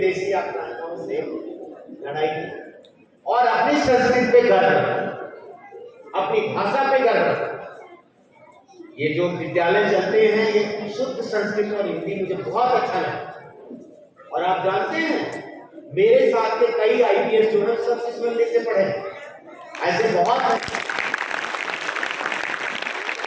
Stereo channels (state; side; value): identical; both; correlation 1.00